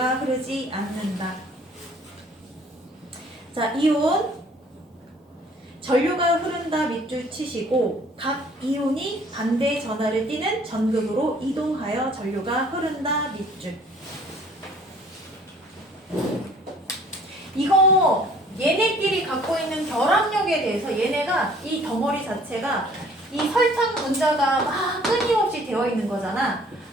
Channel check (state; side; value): normal; both; correlation 0.55